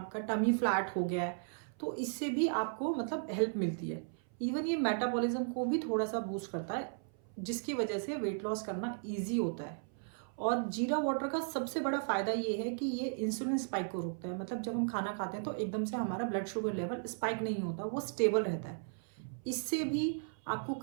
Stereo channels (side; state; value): left; silent; 54 dB below the other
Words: टमी फ्लैट हो गया है। तो इससे भी आपको मतलब हेल्प मिलती है। इवन ये मेटाबॉलिज्म को भी थोड़ा सा बूस्ट करता है, जिसकी वजह से वेट लॉस करना ईजी होता है। और जीरा वाटर का सबसे बड़ा फायदा ये है कि ये इंसुलिन स्पाइक को रोकता है। मतलब जब हम खाना खाते हैं तो एकदम से हमारा ब्लड शुगर लेवल स्पाइक नहीं होता, वो स्टेबल रहता है। इससे भी आपको